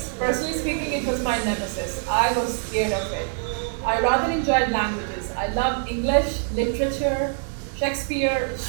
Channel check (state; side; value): silent; left; 62 dB below the other